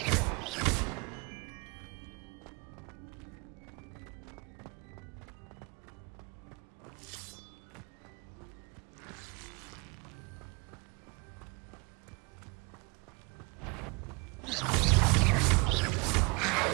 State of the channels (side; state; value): left; quieter; 28.8 dB